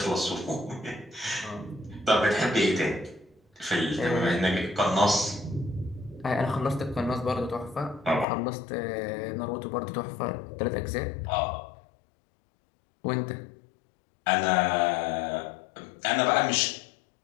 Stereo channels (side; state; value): right; drops out; at 8.2 s